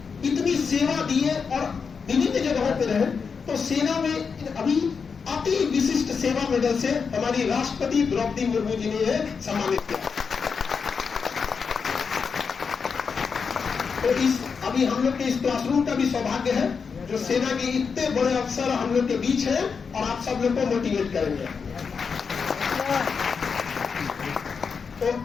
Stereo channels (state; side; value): quieter; right; 5.7 dB